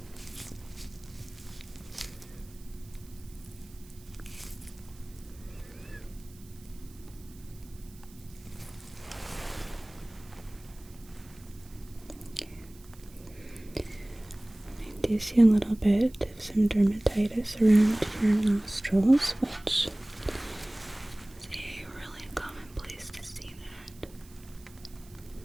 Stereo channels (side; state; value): right; noise; hiss, 24 dB below the sound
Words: I do see a little bit of some dermatitis around your nostrils, which is a really common place to see that.